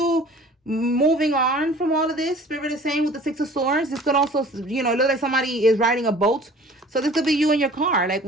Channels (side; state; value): both; normal; correlation 0.48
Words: moving on from all of this. Spirit is saying with the Six of Swords, this could also, you know, look like somebody is riding a boat. So this could be you in your car. Like,